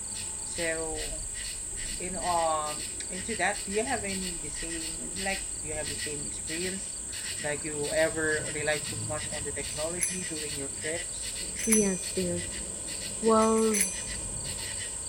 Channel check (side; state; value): both; identical; correlation 1.00